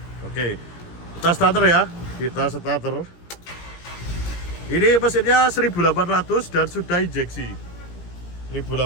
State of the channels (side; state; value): right; late; 17 ms